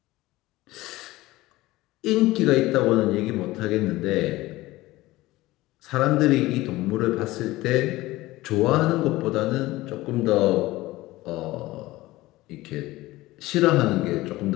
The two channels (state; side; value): quieter; right; 18.4 dB